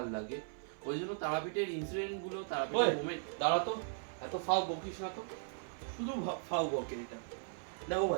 লাগে। ওই জন্য তারাপীঠের ইনসিডেন্টগুলো, তারাপীঠের মোমেন্ট। দাঁড়া তো, এত ফাও বকিস না তো, শুধু ফাও বকে এটা। দেখো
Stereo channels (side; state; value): left; silent; 53 dB below the other